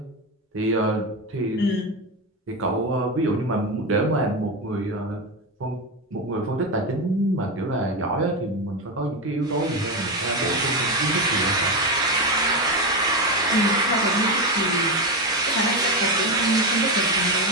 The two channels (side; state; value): both; normal; correlation 0.13